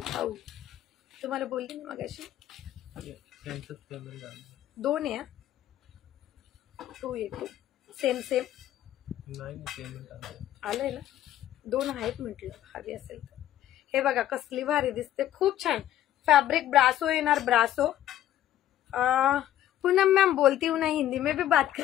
तुम्हाला बोलली ना मगाशी, 2 आहे. 2 आहे, सेम आलंय ना. 2 आहेत म्हटलं, हवी असेल तर. हे बघा कसली भारी दिसते, खूप छान फैब्रिक. ब्रासो येणार, ब्रासो. पूनम मैम बोलती हूँ ना, हिंदी में भी बात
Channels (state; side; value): quieter; right; 12.5 dB